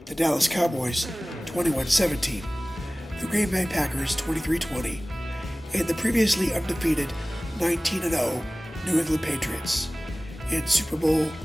the Dallas Cowboys 21-17, the Green Bay Packers 23-20, and the previously undefeated 19-0 New England Patriots in Super Bowl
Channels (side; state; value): both; normal; correlation 0.98